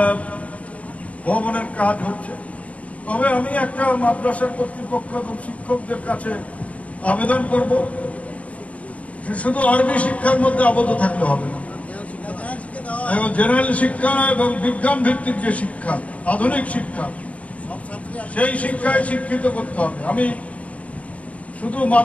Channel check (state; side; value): late; right; 0.067 ms